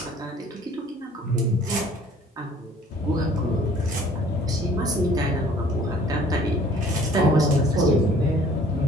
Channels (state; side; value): normal; both; correlation 0.54